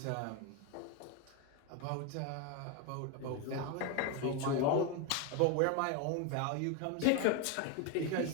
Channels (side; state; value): both; different; correlation 0.02